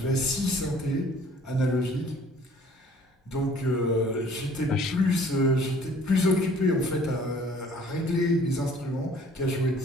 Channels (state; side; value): normal; both; correlation 0.54